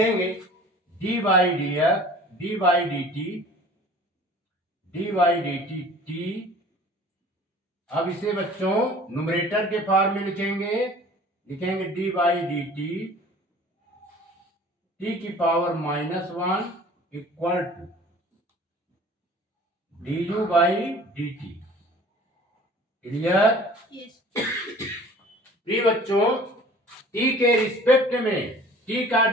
d by d f d by d t t. अब इसे बच्चों न्यूमरेटर के फॉर्म में लिखेंगे डी बाई डी टी की power -1 equal to d u by d t. Clear? प्रिय बच्चों, टी के रिस्पेक्ट में टी का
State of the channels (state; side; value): normal; both; correlation 0.47